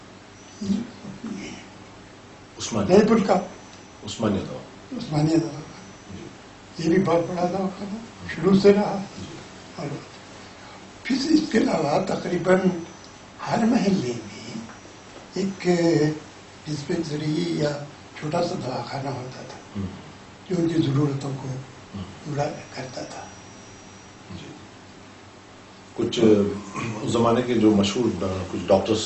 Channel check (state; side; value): identical; both; correlation 1.00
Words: عثمانیہ جے پور کا عثمانیہ دوا عثمانیہ دواخانہ یہ بھی بہت بڑا دواخانہ شروع سے رہا. اور پھر اس کے علاوہ تقریباً ہر محلے میں ایک ڈسپینسری یا چھوٹا سا دواخانہ ہوتا تھا جو ان کی ضرورتوں کو پورا کرتا تھا. جی کچھ اس زمانے کے جو مشہور کچھ ڈاکٹرز